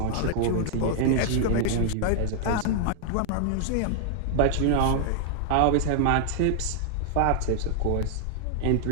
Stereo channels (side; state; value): both; different; correlation -0.01